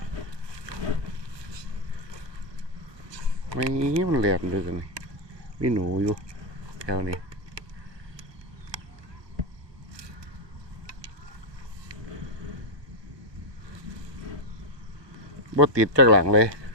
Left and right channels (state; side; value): late; left; 1.4 ms